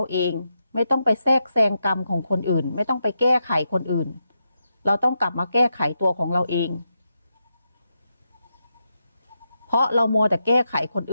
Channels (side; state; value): both; inverted; correlation -0.85